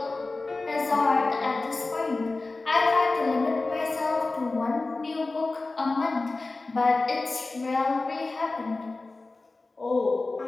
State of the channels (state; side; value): quieter; right; 3.4 dB